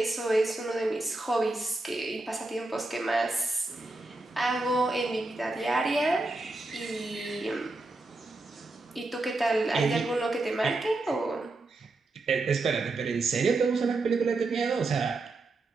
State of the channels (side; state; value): left; quieter; 3.1 dB